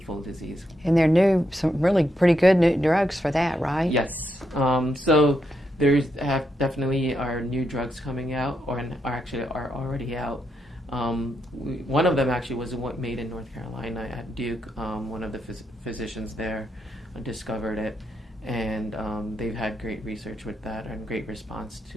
disease. And there are some really pretty good new drugs for that, right? Yes. So there's definitely are new drugs coming out, or are already out. One of them actually was made in North Carolina at Duke. One of the physicians there discovered it, and they've had great research with that and great response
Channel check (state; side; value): normal; both; correlation 0.82